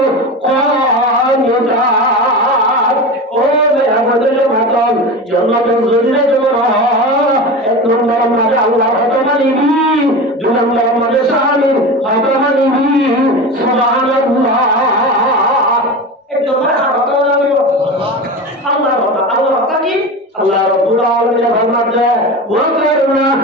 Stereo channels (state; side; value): normal; both; correlation 0.27